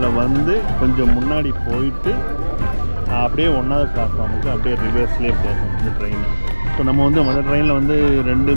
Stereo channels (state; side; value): inverted; both; correlation -1.00